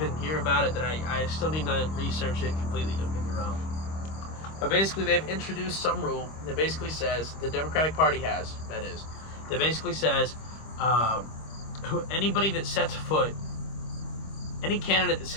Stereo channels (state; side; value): late; right; 25 ms